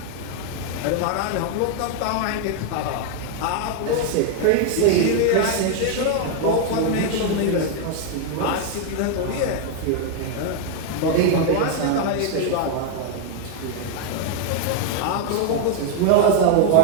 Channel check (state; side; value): different; both; correlation 0.00